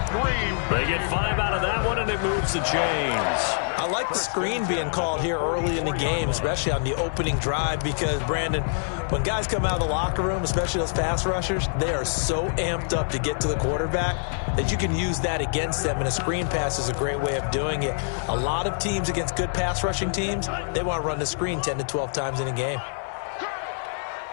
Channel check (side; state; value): right; silent; digital silence